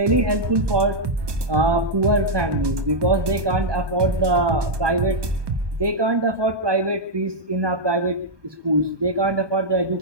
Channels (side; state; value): left; late; 1.2 ms